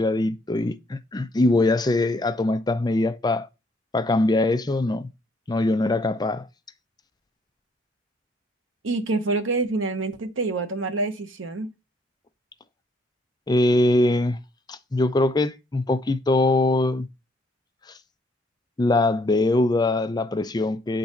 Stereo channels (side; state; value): both; normal; correlation 0.67